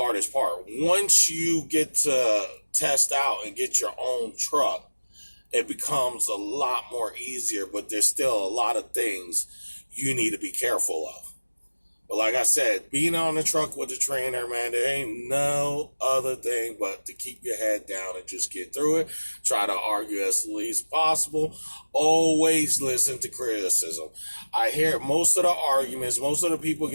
part. Once you get to test out and get your own truck, it becomes a lot more easier, but there's still a lot of things you need to be careful of. But like I said, being on the truck with the trainer, man, there ain't no other thing but to keep your head down and just get through it. Try to argue as least possible. Always listen to criticism. I hear most of the arguments, most of the people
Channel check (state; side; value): inverted; both; correlation -1.00